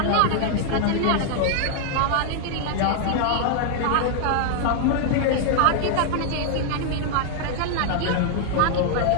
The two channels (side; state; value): both; different; correlation 0.00